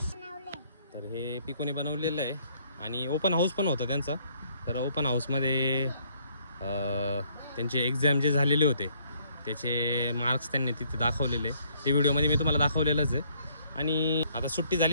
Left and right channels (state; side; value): inverted; both; correlation -0.65